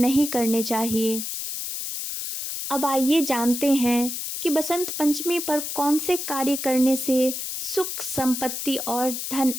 करने चाहिए। अब आइए जानते हैं कि बसंत पंचमी पर कौन से कार्य करने से सुख, संपत्ति और धन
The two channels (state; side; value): noise; left; hiss, 5 dB below the sound